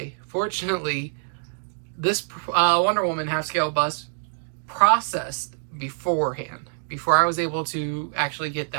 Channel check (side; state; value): left; silent; digital silence